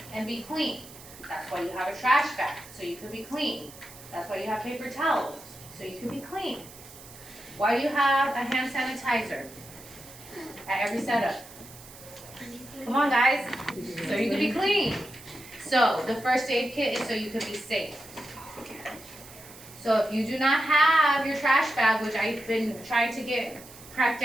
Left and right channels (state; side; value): noise; right; hiss, 18 dB below the sound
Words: and be clean. That's why you have a trash bag, so you can be clean. That's why you have paper towels, so you can be clean. Why do you have a hand sanitizer at every setup? Come on, guys. So you can be clean. So the first aid kit is so you can be safe. So if you do not have your trash bag, which I've been trying to get cracked